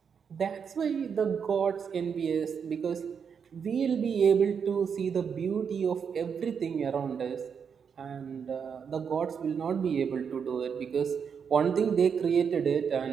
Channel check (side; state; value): left; quieter; 6.8 dB